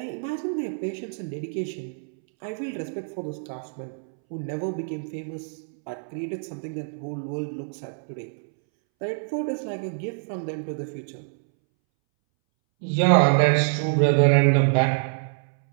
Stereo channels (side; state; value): left; silent; 61 dB below the other